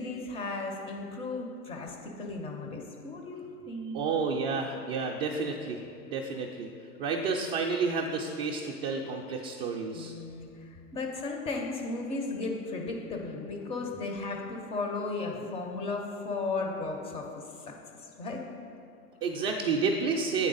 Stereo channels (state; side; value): normal; both; correlation 0.27